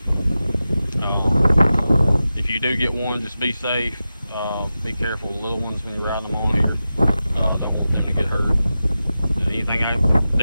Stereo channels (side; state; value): both; inverted; correlation -0.93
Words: If you do get one, just be safe. Be careful with little ones when you're riding them on here. Don't want them to get hurt. Anything I can